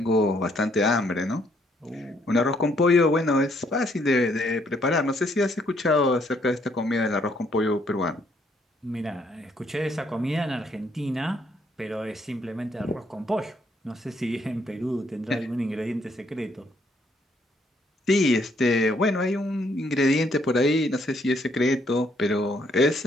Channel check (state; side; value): normal; both; correlation 0.69